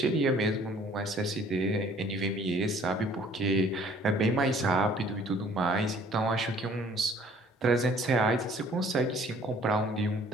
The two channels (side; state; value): both; normal; correlation 0.56